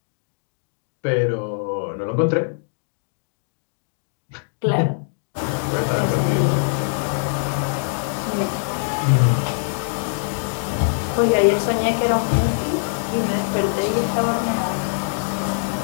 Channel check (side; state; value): right; silent; 64 dB below the other